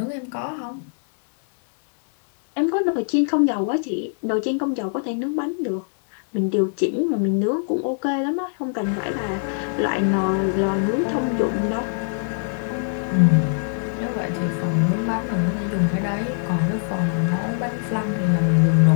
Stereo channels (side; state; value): right; silent; 64 dB below the other